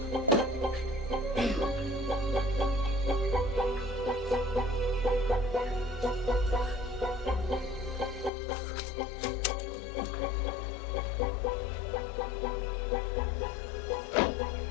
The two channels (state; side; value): drops out; right; at 8.3 s